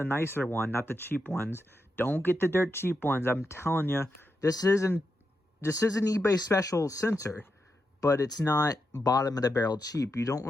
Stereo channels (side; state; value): both; normal; correlation 0.86